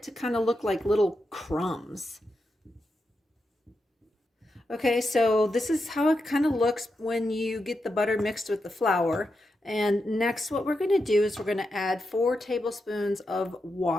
to kind of look like little crumbs. Okay, so this is how it kind of looks when you get the butter mixed with the flour. And next what we're going to do is we're going to add 4 tablespoons of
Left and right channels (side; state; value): both; normal; correlation 0.86